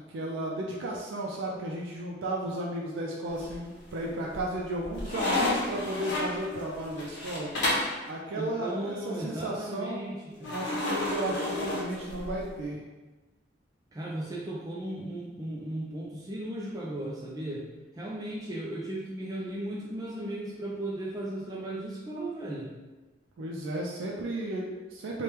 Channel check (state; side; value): normal; both; correlation 0.29